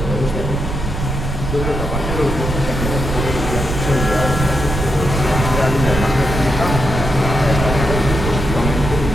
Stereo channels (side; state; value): right; noise; rumble, 4 dB below the sound